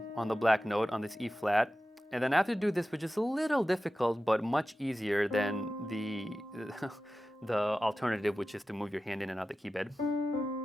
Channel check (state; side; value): normal; both; correlation 0.94